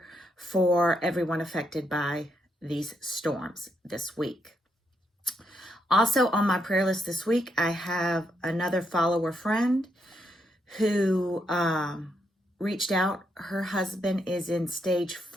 for everyone affected by these storms this week. Also on my prayer list this week, I have another follower friend who reached out. Her husband is in stage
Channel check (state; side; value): normal; both; correlation 0.79